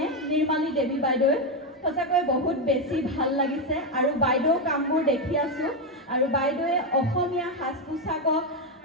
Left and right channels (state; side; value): normal; both; correlation 0.07